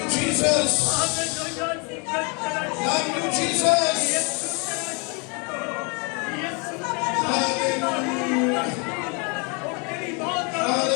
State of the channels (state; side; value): quieter; right; 32.8 dB